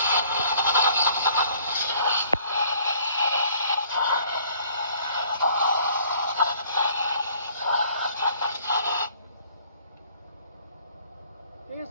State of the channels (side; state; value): both; inverted; correlation -0.57